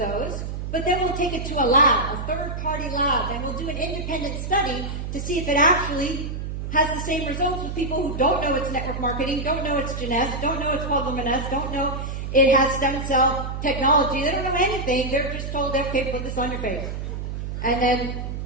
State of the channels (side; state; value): right; noise; hum, 5 dB below the sound